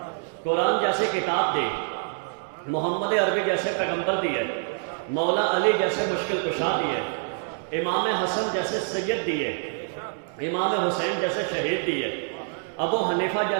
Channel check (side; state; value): left; silent; 61 dB below the other